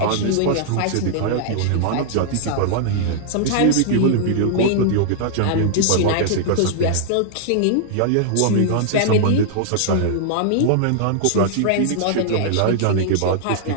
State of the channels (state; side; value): different; both; correlation -0.01